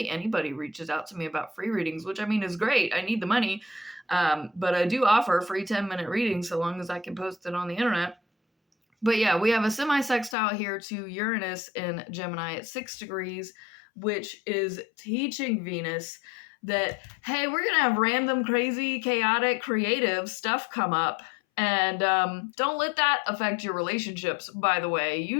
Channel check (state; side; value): drops out; right; at 10.4 s